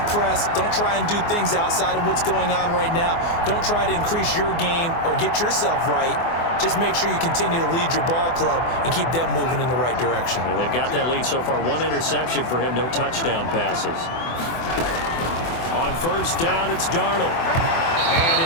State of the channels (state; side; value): late; right; 24 ms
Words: press. Don't try and do things outside of what's going on right now. Don't try to increase your game or get yourself right. Just make sure you continue to lead your ball club and keep them moving in the right direction. Yeah, they've got that lead so far. 1 interception for him, no touchdown passes. On 1st down, it's Darnold. And